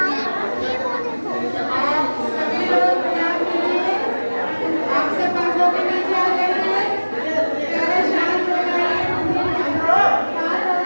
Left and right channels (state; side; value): inverted; both; correlation -1.00